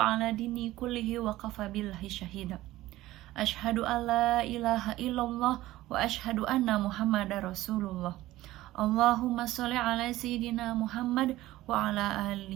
ala dini kullihi wa kafa billahi syahida. Asyhadu alla ilaha illallah wa asyhadu anna muhammadar rasulullah. Allahumma sholli ala sayyidina Muhammad wa ala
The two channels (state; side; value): quieter; left; 16.3 dB